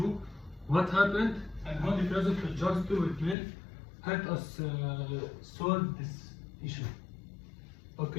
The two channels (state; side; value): drops out; right; at 3.4 s